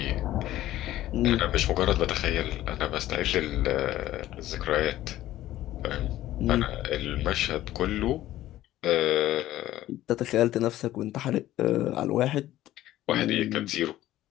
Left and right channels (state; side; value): quieter; right; 14.4 dB